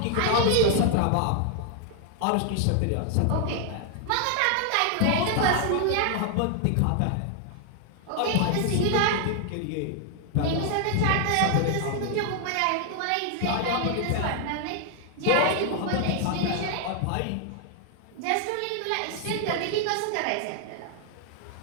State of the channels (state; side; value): different; both; correlation 0.00